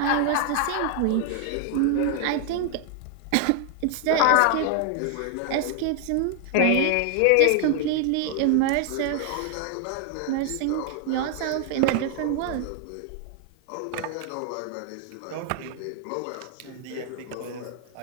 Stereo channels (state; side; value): different; both; correlation 0.00